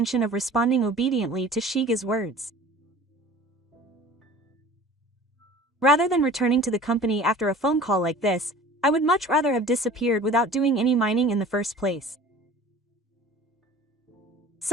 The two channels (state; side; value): normal; both; correlation 0.44